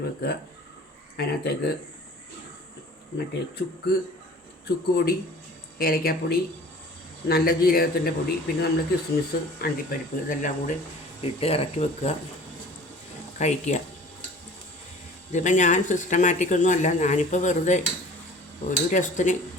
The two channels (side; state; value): both; normal; correlation 0.45